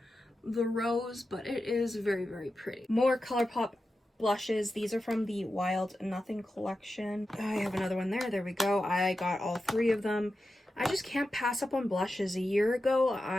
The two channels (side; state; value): both; normal; correlation 0.91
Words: the rose, but it is very pretty. More ColourPop blushes. These are from the Wild Nothing collection. I have another one there we go. I got all 3 of them. I just can't pass up on blushes. A year ago,